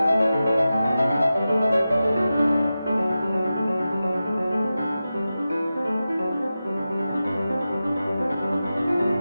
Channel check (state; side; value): inverted; both; correlation -0.93